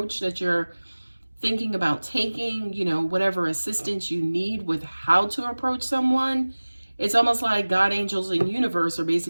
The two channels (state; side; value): inverted; both; correlation -1.00